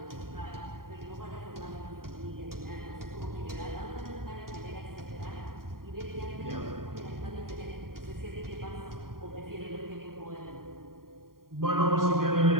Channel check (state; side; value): late; left; 0.92 ms